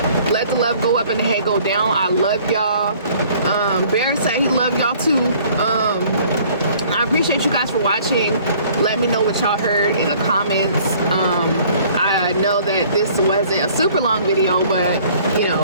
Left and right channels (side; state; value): both; inverted; correlation -0.55